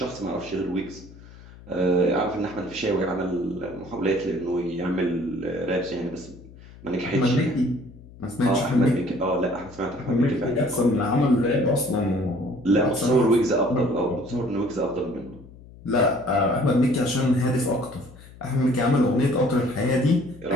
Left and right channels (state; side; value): noise; left; hum, 20 dB below the sound